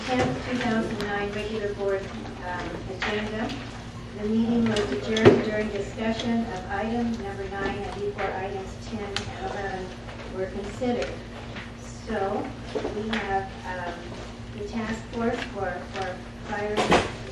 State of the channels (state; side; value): identical; both; correlation 1.00